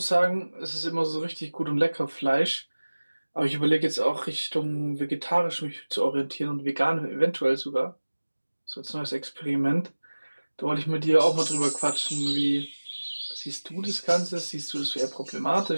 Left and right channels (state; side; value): inverted; both; correlation -1.00